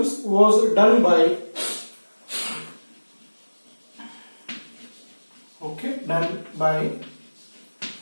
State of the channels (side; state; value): both; inverted; correlation -1.00